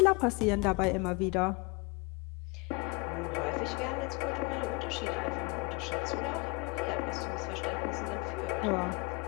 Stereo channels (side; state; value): right; quieter; 29.0 dB